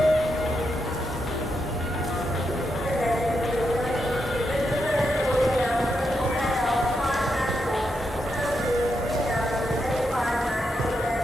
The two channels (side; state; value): both; normal; correlation 0.84